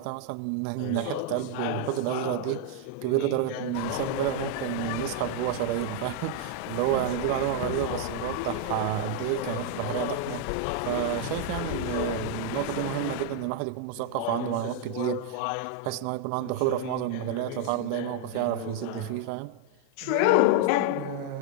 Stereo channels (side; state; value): both; different; correlation 0.00